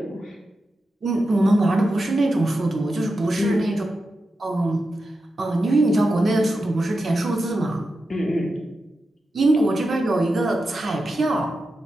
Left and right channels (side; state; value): both; normal; correlation 0.90